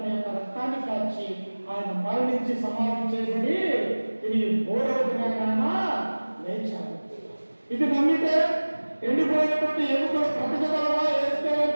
యొక్క రక్తాన్ని కాచి ఆయన మరణించి సమాధి చేయబడి తిరిగి 3వ దినాన లేచాడు. ఇది నమ్మితే ఎండిపోయినటువంటి ఎముకలు బ్రతకగలవా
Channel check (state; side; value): inverted; both; correlation -1.00